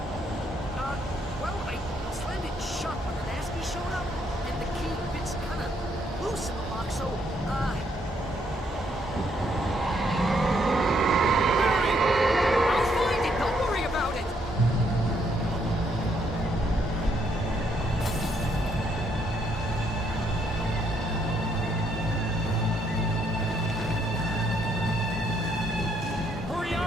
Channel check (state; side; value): normal; both; correlation 0.72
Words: Well, I slammed it shut when the nasty showed up, and the key fits kind of loose in the lock, so, Barry! I'll find it. Don't worry about it. Hurry